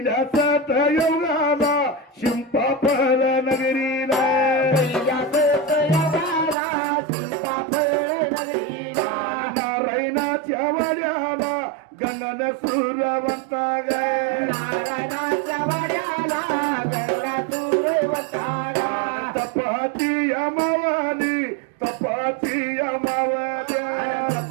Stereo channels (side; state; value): left; drops out; at 6.6 s